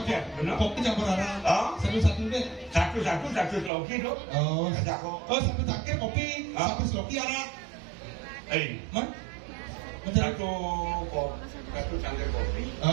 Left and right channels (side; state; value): left; drops out; at 3.7 s